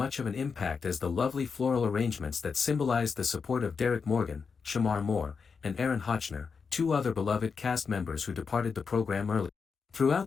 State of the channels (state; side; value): quieter; right; 5.5 dB